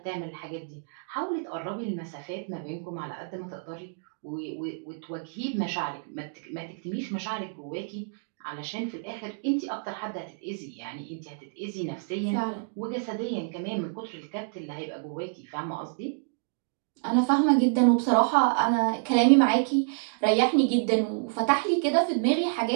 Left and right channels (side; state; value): left; silent; digital silence